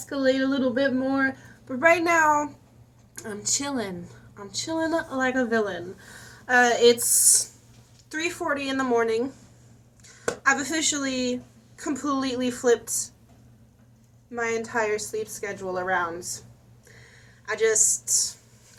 a little bit more, but right now I'm chilling. I'm chilling like a villain. It's 3:40 in the morning. I've officially completely flipped my entire sleep schedule around. I just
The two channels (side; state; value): both; identical; correlation 1.00